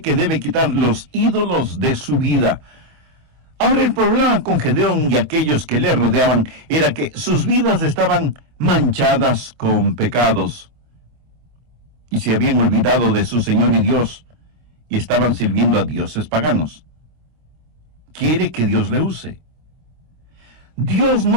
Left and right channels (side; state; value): left; late; 25 ms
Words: que debe quitar los ídolos de su vida. Ahora, el problema con Gedeón y aquellos que le rodeaban era que sus vidas estaban manchadas con pecados. Y se habían olvidado de su Señor y Dios, y estaban sirviendo a dioses paganos. Quiere que Dios le use. Dios